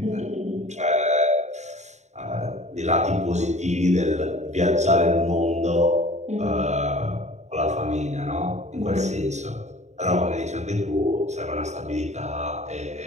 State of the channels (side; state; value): left; late; 0.33 ms